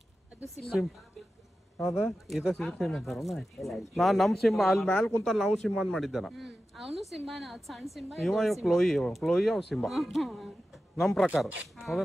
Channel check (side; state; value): both; normal; correlation 0.93